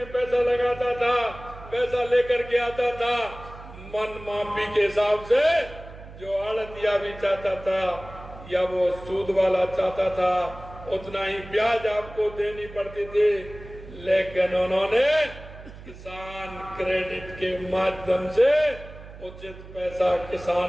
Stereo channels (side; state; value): right; noise; hum, 16 dB below the sound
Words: पैसा लगाता था, पैसा लेकर के आता था। मन माफी के हिसाब से जो आड़तिया भी चाहता था या वो सूद वाला चाहता था, उतना ही ब्याज आपको देनी पड़ती थी। लेकिन उन्होंने किसान क्रेडिट के माध्यम से उचित पैसा